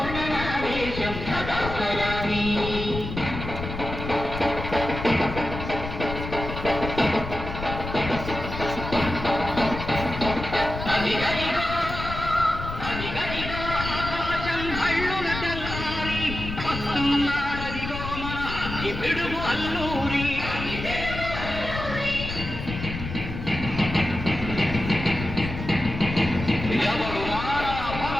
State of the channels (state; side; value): noise; left; rumble, 7 dB below the sound